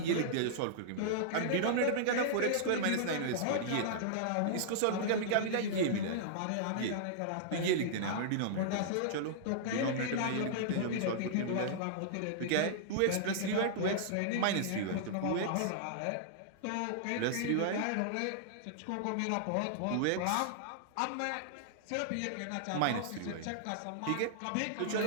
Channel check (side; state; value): both; different; correlation -0.01